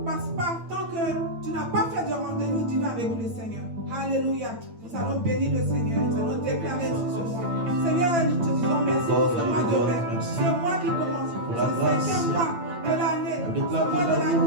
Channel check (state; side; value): late; left; 8.8 ms